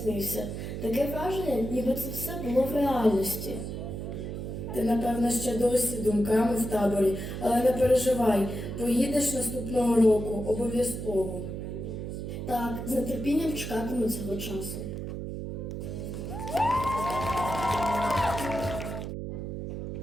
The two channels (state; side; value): noise; right; hum, 6 dB below the sound